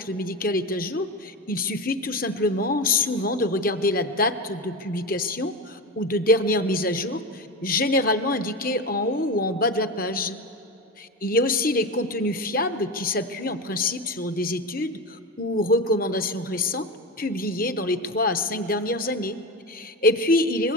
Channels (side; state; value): both; normal; correlation 0.22